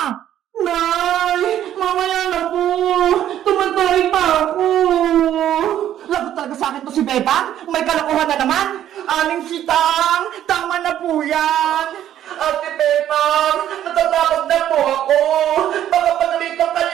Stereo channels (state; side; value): quieter; left; 11.3 dB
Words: Nay! Mamaya na po! Tumatay pa ako! Lagot talaga sa akin to si Bebang? May kalokohan na naman! Aling sitang! Tama na po yan! Ate Bebang! Natatakot na po ako! Baka pagalitan ka